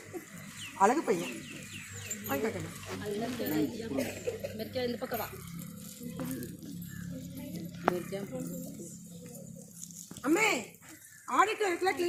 அழகு பையன் இந்த பக்கம் வா. அம்மே ஆடிட்டோரியத்துல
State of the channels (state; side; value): identical; both; correlation 1.00